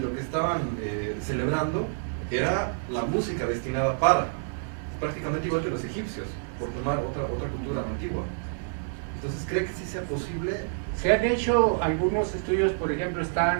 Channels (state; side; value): silent; left; digital silence